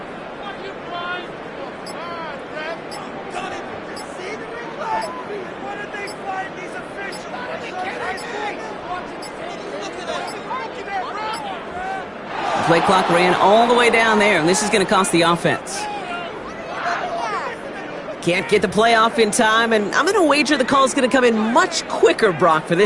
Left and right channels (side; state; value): both; identical; correlation 1.00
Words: Play clock ran all the way down there, and this is going to cost the offense. Can't get the play off in time, and I'm going to wager the call is going to come in much quicker, Brock, for